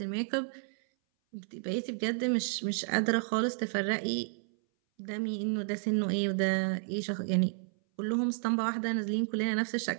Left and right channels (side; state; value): left; silent; 57 dB below the other